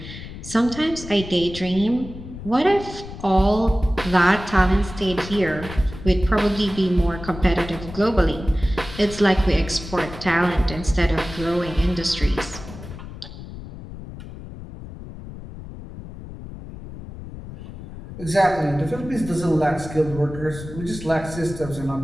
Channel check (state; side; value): noise; left; rumble, 12 dB below the sound